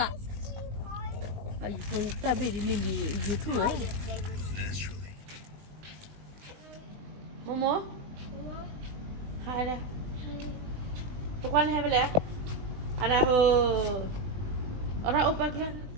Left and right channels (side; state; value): left; late; 20 ms